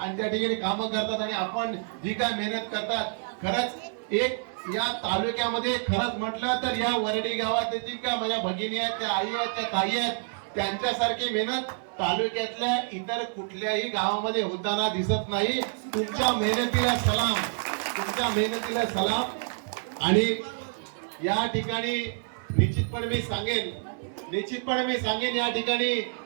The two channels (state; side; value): silent; left; digital silence